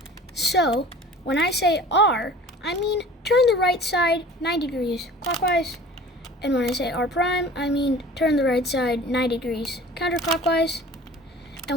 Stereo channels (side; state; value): both; normal; correlation 0.44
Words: So, when I say R, I mean turn the right side 90 degrees clockwise. And when I say R prime, I mean turn the right side 90 degrees counterclockwise.